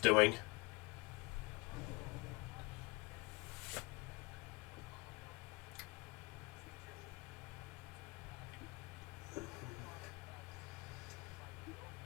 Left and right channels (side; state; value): right; quieter; 25.9 dB